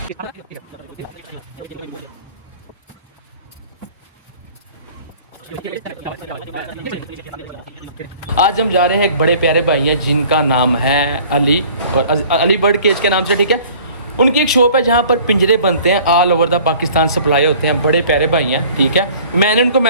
आज हम जा रहे हैं एक बड़े प्यारे भाई हैं जिनका नाम है अली, और अली बर्ड केज के नाम से, ठीक है। उनकी एक शॉप है जहाँ पर पिंजरे बनते हैं, all over the Pakistan supply होते हैं। बड़े प्यारे भाई हैं, ठीक है। मैंने उनको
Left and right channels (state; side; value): inverted; both; correlation -0.50